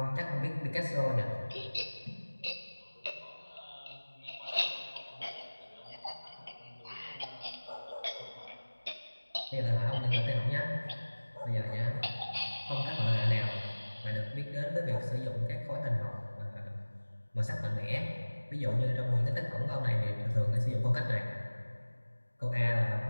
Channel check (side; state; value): both; inverted; correlation -1.00